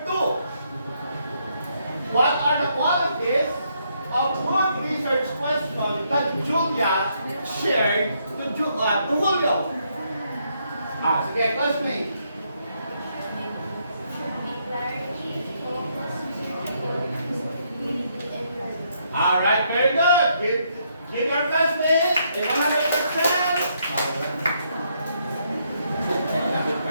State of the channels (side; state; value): both; inverted; correlation -0.74